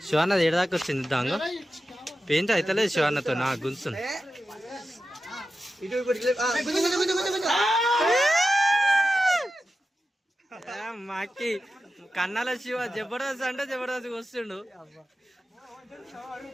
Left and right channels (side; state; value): both; normal; correlation 0.92